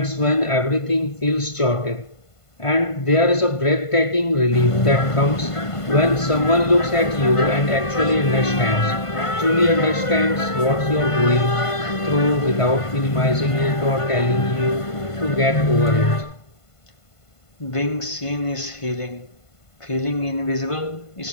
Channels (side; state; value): right; late; 1.5 ms